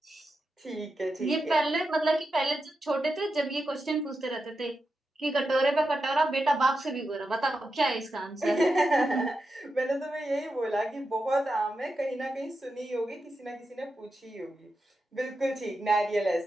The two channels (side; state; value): both; normal; correlation 0.88